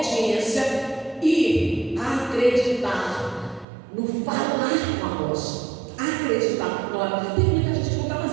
e acreditar no falar com a rocha. Acreditar. Olha, tem muita gente que não está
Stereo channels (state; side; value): drops out; left; at 3.7 s